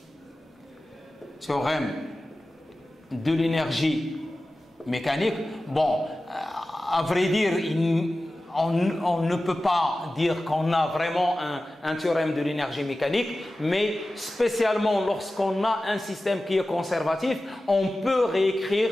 Théorème de l'énergie mécanique. Bon, à vrai dire, on ne peut pas dire qu'on a vraiment un théorème de l'énergie mécanique, mais spécialement lorsqu'on a un système qui est conservatif, on peut réécrire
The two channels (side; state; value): both; normal; correlation 0.95